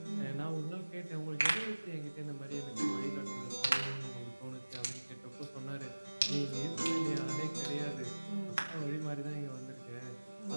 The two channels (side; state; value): both; inverted; correlation -1.00